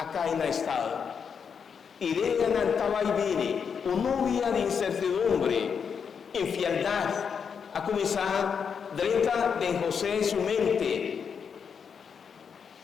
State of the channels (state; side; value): quieter; right; 6.6 dB